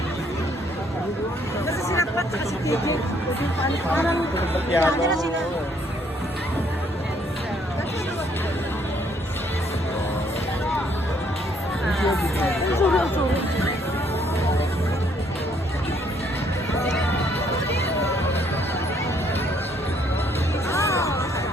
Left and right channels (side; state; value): both; normal; correlation 0.67